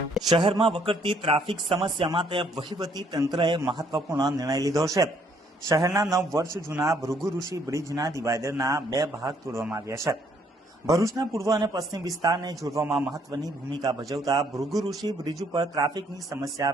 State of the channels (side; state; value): both; normal; correlation 0.66